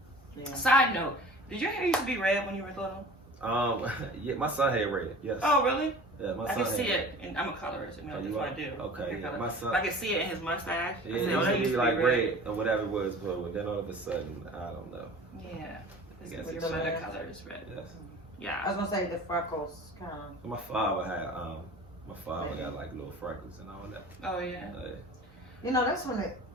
Yeah. Side note, did your hair used to be red when you were little? Yeah, my son had red. Yes. Oh, really? Yeah, my I son can see it, and I'm a colorist. You know, that's what I do. Okay, yeah, my son. I can see it in his mustache. Yeah, it used to be like red or whatever it was, but then all of a sudden, I don't know. Yeah, your other color is red. Yes. Yeah. I was gonna say the freckles kind of. My father got like little freckles and all that. Oh yeah. You know, that's when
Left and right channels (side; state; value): both; normal; correlation 0.41